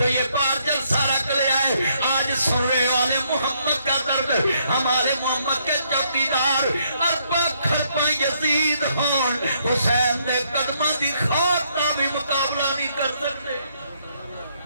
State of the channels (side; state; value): both; inverted; correlation -0.71